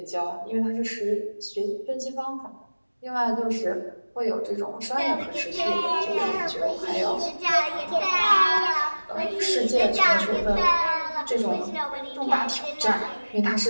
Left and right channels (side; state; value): both; inverted; correlation -1.00